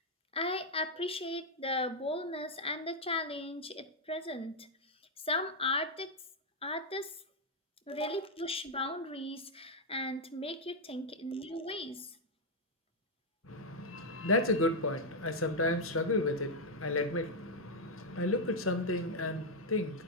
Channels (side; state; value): both; normal; correlation -0.01